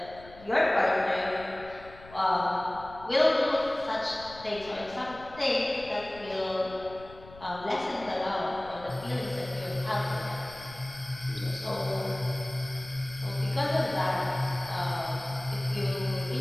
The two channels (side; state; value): left; noise; rumble, 19 dB below the sound